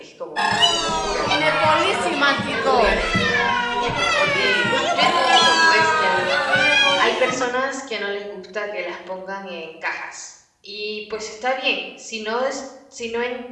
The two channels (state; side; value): identical; both; correlation 1.00